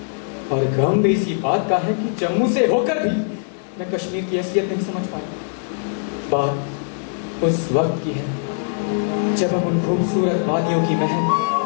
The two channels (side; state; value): right; silent; digital silence